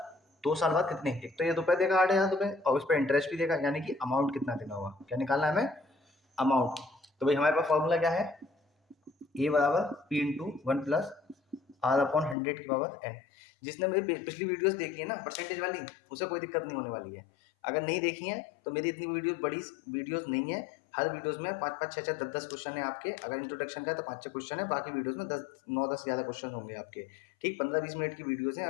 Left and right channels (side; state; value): right; drops out; at 12.4 s